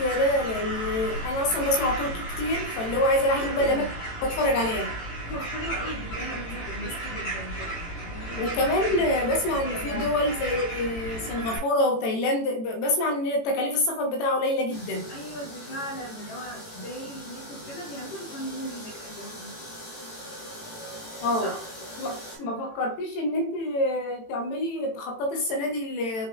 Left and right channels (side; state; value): right; late; 18 ms